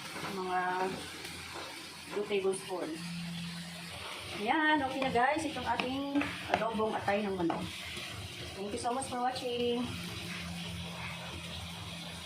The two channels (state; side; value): identical; both; correlation 1.00